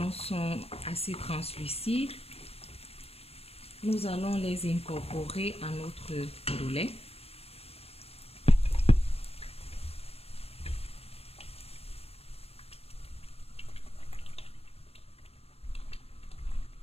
sont assez translucides, Nous allons les incorporer à notre ndolé.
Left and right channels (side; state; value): right; late; 0.29 ms